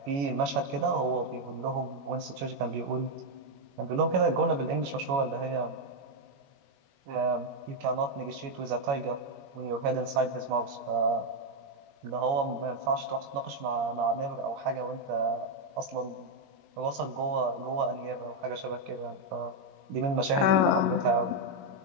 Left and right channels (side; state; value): left; late; 21 ms